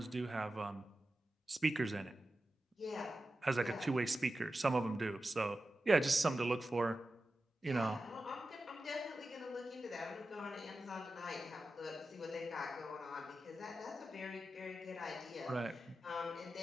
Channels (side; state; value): both; normal; correlation 0.92